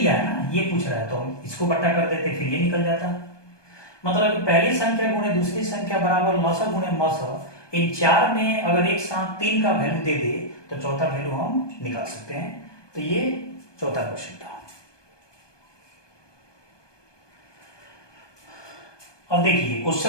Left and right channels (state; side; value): late; right; 1.2 ms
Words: है ना, ये पूछ रहा है तो हम इसको बट्टा कर देते, फिर ये निकल जाता। मतलब पहली संख्या गुणे दूसरी संख्या बराबर लॉसा गुणे मौसा, इन चार में अगर एक साथ 3 का वैल्यू दे दे तो चौथा वैल्यू हम निकाल सकते हैं। तो ये चौथा क्वेश्चन था। अब देखिए